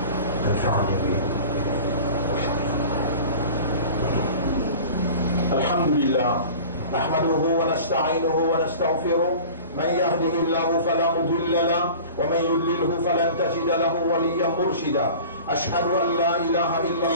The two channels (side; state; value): both; inverted; correlation -0.40